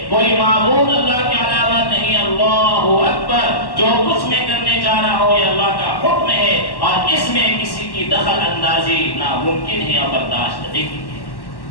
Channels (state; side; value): late; right; 1.1 ms